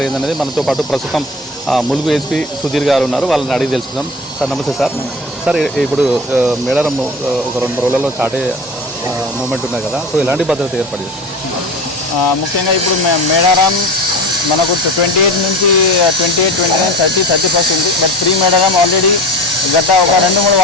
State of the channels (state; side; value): normal; both; correlation 0.33